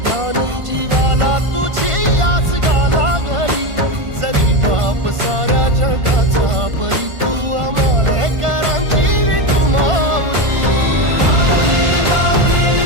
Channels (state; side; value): late; left; 1.5 ms